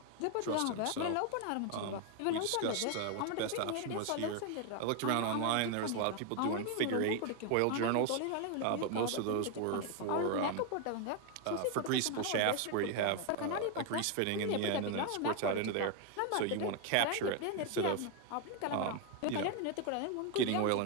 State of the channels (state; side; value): different; both; correlation 0.01